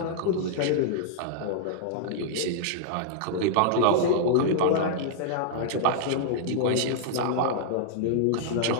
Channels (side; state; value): both; different; correlation -0.01